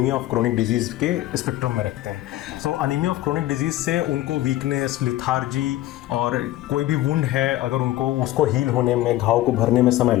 ऑफ क्रोनिक डिजीज़ के स्पेक्ट्रम में रखते हैं। सो अनीमिया ऑफ क्रोनिक डिजीज़ से उनको वीकनेस, लिथार्जी और कोई भी वुंड है अगर उनको उसको हील होने में, घाव को भरने में समय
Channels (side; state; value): right; quieter; 15.3 dB